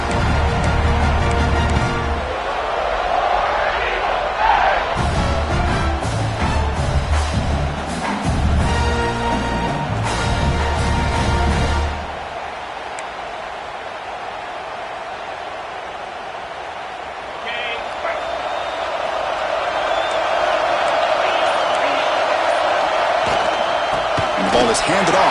Ball is handed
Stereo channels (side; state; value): both; identical; correlation 1.00